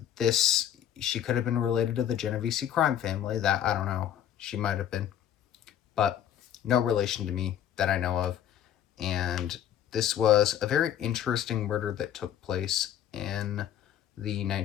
She could have been related to the Genovese crime family. That, I don't know. She might have been. But no relation to me that I know of. And this was a very interesting murder that took place in the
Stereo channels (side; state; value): right; quieter; 10.5 dB